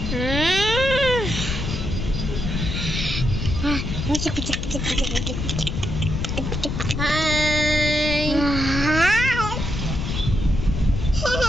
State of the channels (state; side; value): noise; left; rumble, 3 dB below the sound